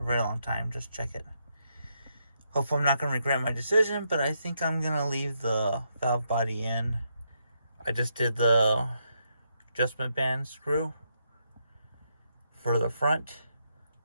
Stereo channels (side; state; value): both; inverted; correlation -0.79